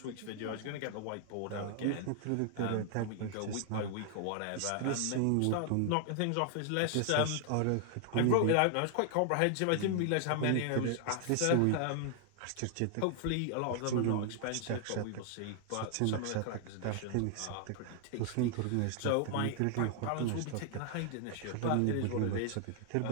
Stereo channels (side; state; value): both; different; correlation 0.00